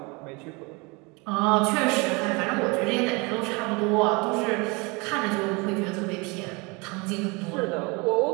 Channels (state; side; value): quieter; left; 27.8 dB